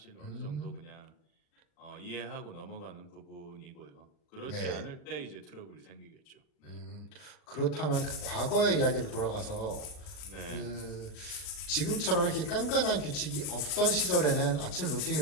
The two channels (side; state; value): right; late; 40 ms